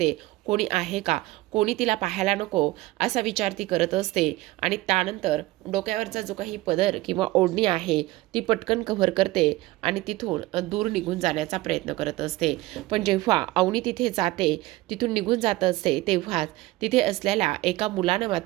कोणी आहे का, कोणी तिला पाहायला नको असा विचार ती करत असते आणि त्यानंतर डोक्यावरचा जो काही पदर किंवा ओढणी आहे ती पटकन कव्हर करते आणि तिथून दूर निघून जाण्याचा प्रयत्न करत असते. पण जेव्हा अवनी तिथे जाते, तिथून निघून जात असते तेव्हाच तिथे असलेल्या एका मुलानं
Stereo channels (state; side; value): quieter; left; 19.0 dB